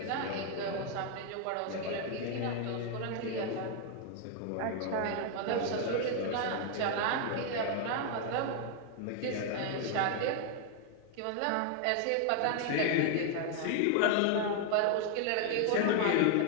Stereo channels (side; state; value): both; different; correlation 0.00